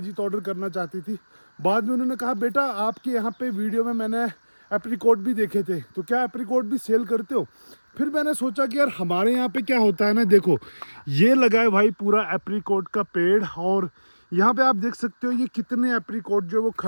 ऑर्डर करना चाहती थी। बाद में उन्होंने कहा, बेटा आपके यहाँ पे वीडियो में मैंने एप्रीकोट भी देखे थे, तो क्या एप्रीकोट भी सेल करते हो? फिर मैंने सोचा कि यार हमारे यहाँ पे क्या होता है ना, देखो ये लगा है भाई पूरा एप्रीकोट का पेड़, और यहाँ पे आप देख सकते हो ये कितने एप्रीकोट जो है वो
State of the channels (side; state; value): both; inverted; correlation -1.00